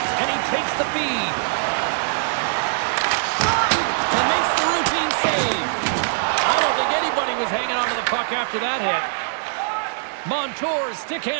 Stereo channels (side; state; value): left; silent; 64 dB below the other